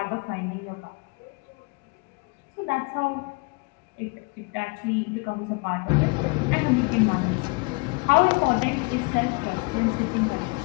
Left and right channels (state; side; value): quieter; right; 30.9 dB